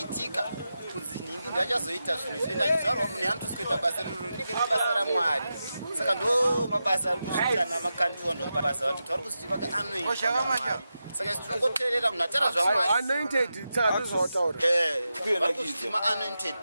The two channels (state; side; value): inverted; both; correlation -0.90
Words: kunzi nhingi ndachazoita zvinhu zvenda achizvarwa munhu anotosi kuita basa riro rinenge riri basa ramwari saka ndo mabasa ari kuzviita namakandiwa ndo mabasa vantu vari kuzvitiva anointed saka tinongoteerera munhu atara zvamwari anointed tsazvautaura vari kuzviti ma-anointed